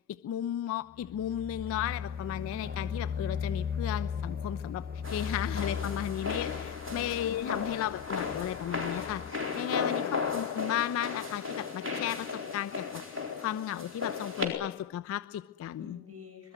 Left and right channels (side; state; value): right; quieter; 7.9 dB